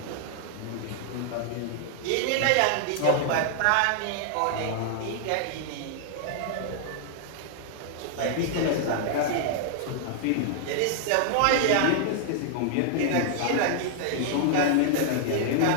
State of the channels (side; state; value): both; different; correlation -0.01